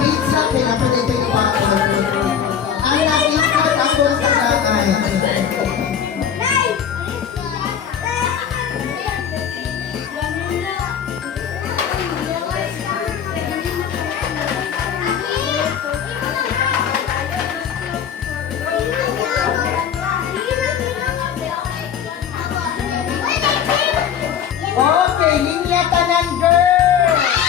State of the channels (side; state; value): right; quieter; 8.3 dB